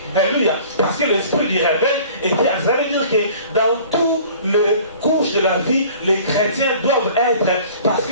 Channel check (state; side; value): inverted; both; correlation -0.48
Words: Alléluia. Parce que l'esprit du réveil était. Ça veut dire que dans toutes les couches de la vie, les chrétiens doivent être. Parce